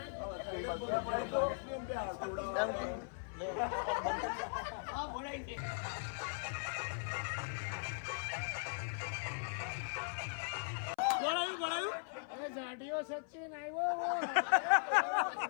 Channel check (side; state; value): right; silent; 52 dB below the other